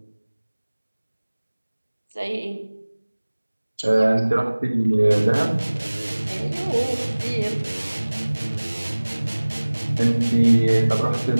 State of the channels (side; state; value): both; inverted; correlation -1.00